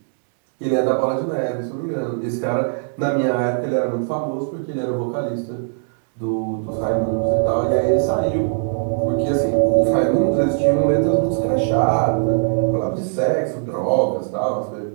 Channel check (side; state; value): left; silent; digital silence